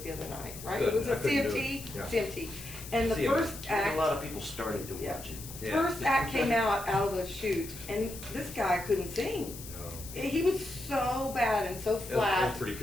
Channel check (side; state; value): left; noise; hiss, 13 dB below the sound